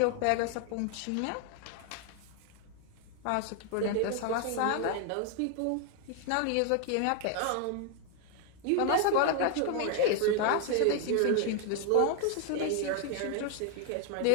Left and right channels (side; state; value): both; different; correlation 0.00